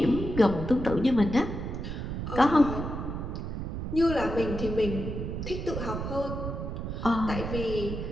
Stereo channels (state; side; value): noise; right; rumble, 5 dB below the sound